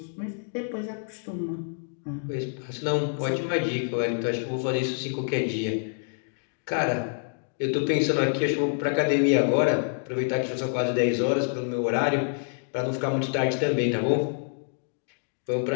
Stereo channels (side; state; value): right; silent; 60 dB below the other